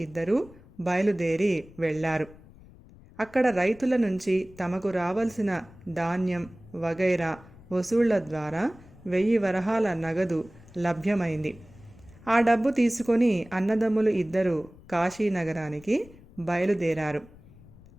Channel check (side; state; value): left; noise; rumble, 22 dB below the sound